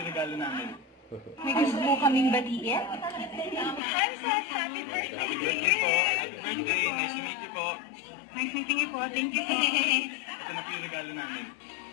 regalo namin. May gusto po kaming batiin. Hi, sir. Happy birthday. Happy birthday po. Happy birthday. Nice to meet you po. Nice meeting you po. Thank you po. Ito na po yung regalo namin.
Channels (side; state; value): right; drops out; at 3.8 s